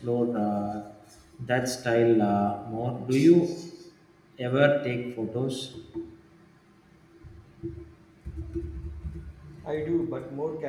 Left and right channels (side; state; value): both; identical; correlation 1.00